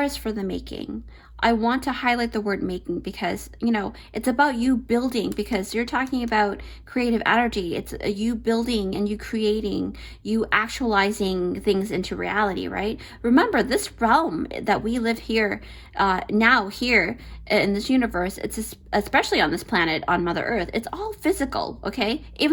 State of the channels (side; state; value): both; identical; correlation 1.00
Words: for the making. I want to highlight the word making, because, you know, it's about you building, because you're talking about creative energy. It's you building and you creating, you actualizing things into reality, right? Remember, this realm that we live here, now here in this universe, it's especially on this planet, on Mother Earth, it's all physical, okay?